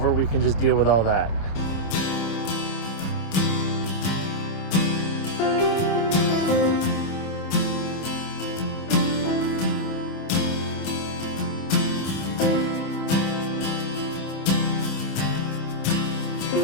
we can just deal with all that.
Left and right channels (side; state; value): right; late; 27 ms